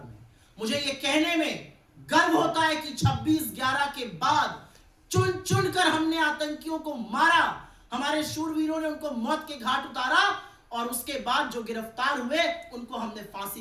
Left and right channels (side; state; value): both; identical; correlation 1.00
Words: मुझे ये कहने में गर्व होता है कि 26/11 के बाद चुन चुन कर हमने आतंकियों को मारा, हमारे शूरवीरों ने उनको मौत के घाट उतारा और उसके बाद जो गिरफ्तार हुए उनको हमने फांसी